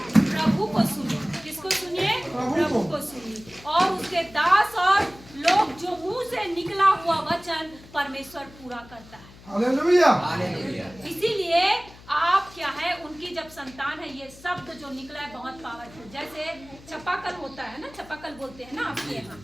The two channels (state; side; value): noise; left; hum, 21 dB below the sound